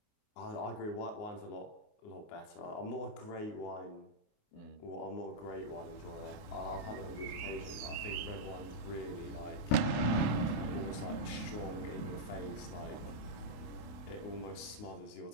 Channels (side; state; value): right; late; 28 ms